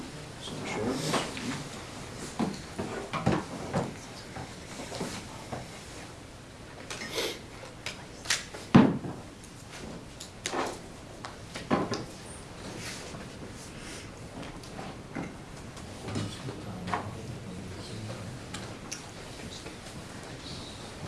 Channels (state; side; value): identical; both; correlation 1.00